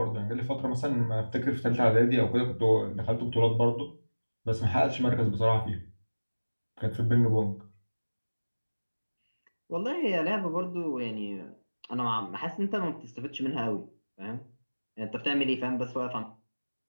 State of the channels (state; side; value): inverted; both; correlation -1.00